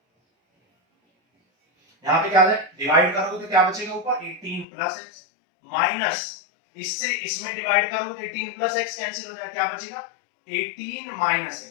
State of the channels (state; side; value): drops out; right; at 4.7 s